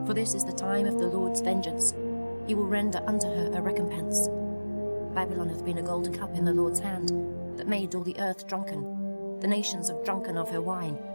for this is the time of the Lord's vengeance. He will render unto her a recompense. Babylon hath been a golden cup in the Lord's hand, that made all the earth drunken. The nations have drunken of her wine,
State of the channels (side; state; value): both; inverted; correlation -1.00